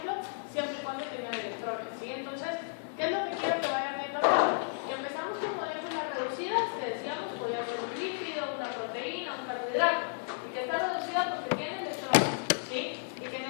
siempre y cuando tengan electrones, ¿sí? Entonces, ¿qué es lo que quiero que vayan viendo acá? Y empezamos con moléculas reducidas, que decíamos podía ser un lípido, una proteína, un carbohidrato, y que está reducida porque tiene electrones, ¿sí? Y que en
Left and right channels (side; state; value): right; silent; digital silence